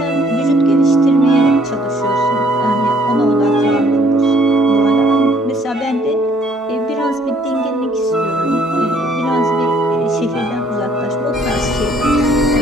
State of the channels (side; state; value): both; normal; correlation 0.62